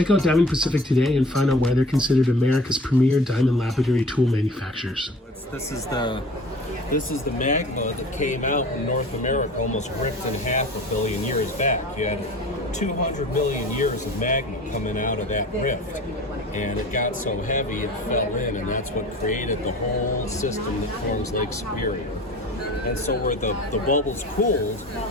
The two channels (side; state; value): both; normal; correlation 0.42